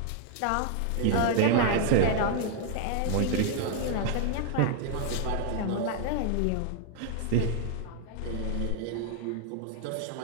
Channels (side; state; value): both; different; correlation 0.00